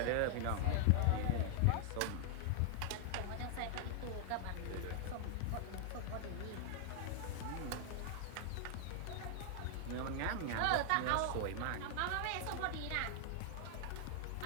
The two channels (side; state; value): both; different; correlation 0.00